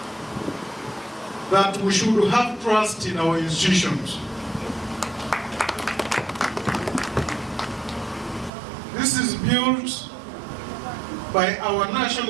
that we should have trust in our institutions. This is built by our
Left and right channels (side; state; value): left; drops out; at 8.5 s